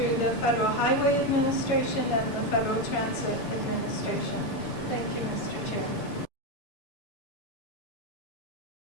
the Federal Highway Administration and the Federal Transit Administration. Thank you, Mr. Chair.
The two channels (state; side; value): late; right; 6.9 ms